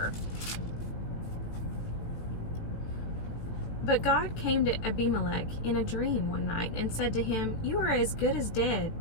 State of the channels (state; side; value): late; right; 18 ms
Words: But God came to Abimelech in a dream one night and said to him, "You are as good as dead